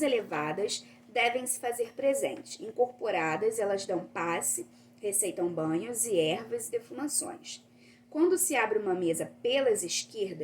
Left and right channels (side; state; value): both; identical; correlation 1.00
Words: elevadas devem se fazer presente. Incorporadas, elas dão passe, receitam banhos e ervas e defumações. Quando se abre uma mesa pelas